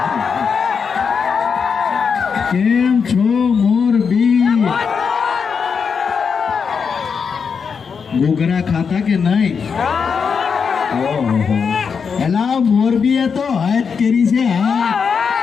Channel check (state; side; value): quieter; right; 6.0 dB